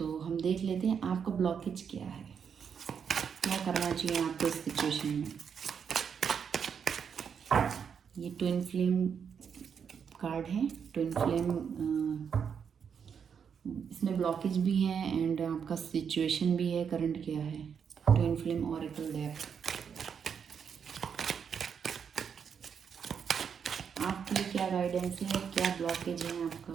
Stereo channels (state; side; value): quieter; left; 7.1 dB